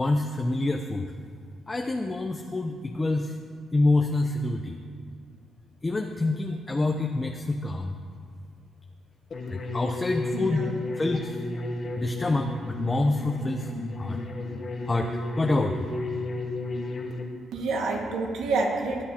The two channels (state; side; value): normal; both; correlation 0.88